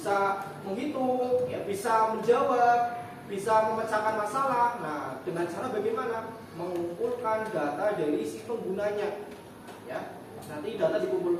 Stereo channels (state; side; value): identical; both; correlation 1.00